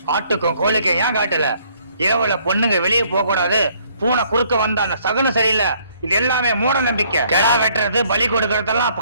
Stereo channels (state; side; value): inverted; both; correlation -0.64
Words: ஆட்டுக்கும் கோழிக்கும் ஏன் காட்டல? இரவுல பொண்ணுங்க வெளியே போக கூடாது, பூனை குறுக்க வந்தா அந்த சகுனம் சரியில்லை. இது எல்லாமே மூட நம்பிக்கை. கெடா வெட்டுறது, பலி கொடுக்கறதெல்லாம்